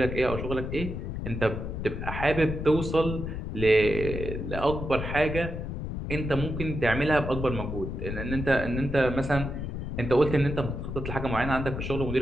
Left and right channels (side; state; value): left; noise; rumble, 5 dB below the sound